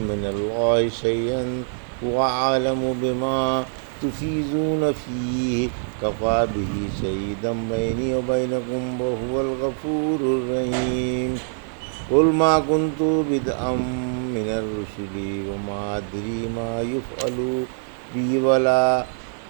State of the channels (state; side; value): silent; left; 62 dB below the other